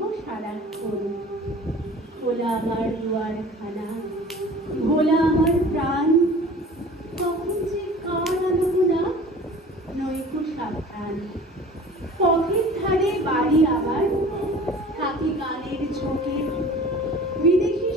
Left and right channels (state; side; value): normal; both; correlation 0.43